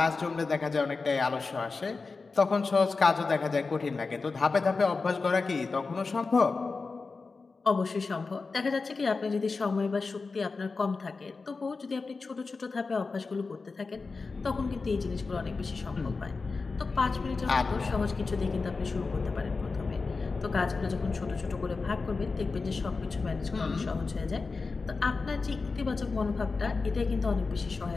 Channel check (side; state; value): right; quieter; 4.2 dB